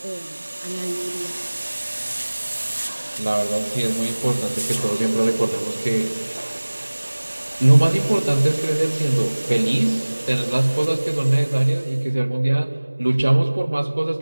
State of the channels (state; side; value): inverted; both; correlation -1.00